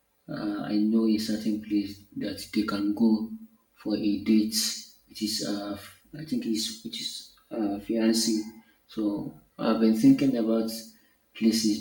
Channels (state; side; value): identical; both; correlation 1.00